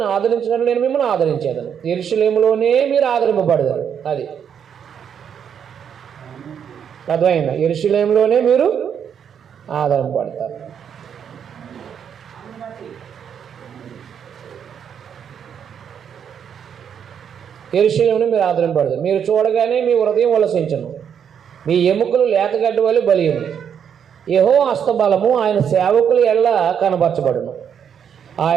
ఆదరించినట్లు నేను మిమ్మల్ని ఆదరించేదను. యెరూషలేములోనే మీరు ఆదరింపబడతారు. అది అర్థమైందా? యెరూషలేములోనే మీరు ఆదరింపబడతారు. యెరూషలేమును మీరు ఆదరింపబడతారు. మీరు చూడగానే మీ హృదయం ఉల్లసించును, మీ ఎముకలు లేతగడ్డి వలె బలియును. యెహోవా హస్తబలము ఆయన సేవకుల ఎల్ల కనబరచబడును.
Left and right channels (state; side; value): quieter; left; 8.0 dB